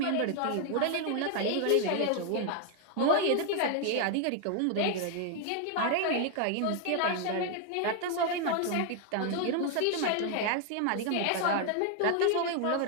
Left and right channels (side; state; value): both; different; correlation 0.00